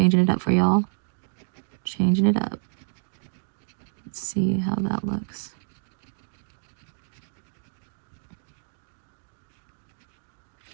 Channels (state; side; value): silent; left; 59 dB below the other